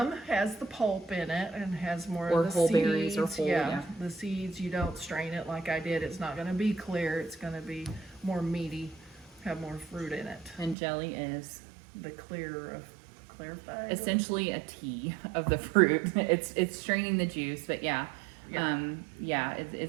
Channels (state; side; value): drops out; left; at 10.8 s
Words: has the pulp in it and has more Or of the whole seeds. berries or whole, yeah. The seeds, you don't strain it like I did. It's not going to be clear. It's going to be more meaty, have more fruit in it. And jelly is The clear of clarified. essentially a tea of the fruit. It's straining the juice, but yeah. Yeah.